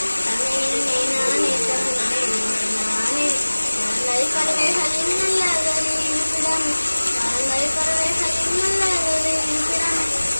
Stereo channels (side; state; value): both; inverted; correlation -1.00